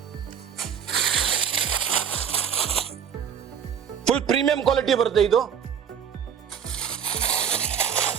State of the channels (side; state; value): left; quieter; 8.0 dB